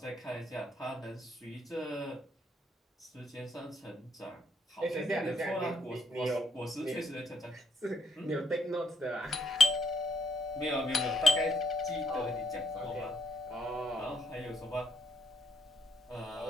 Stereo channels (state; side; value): normal; both; correlation 0.73